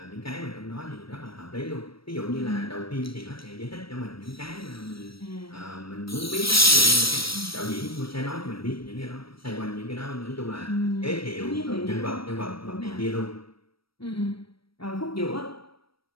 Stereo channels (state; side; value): late; right; 0.75 ms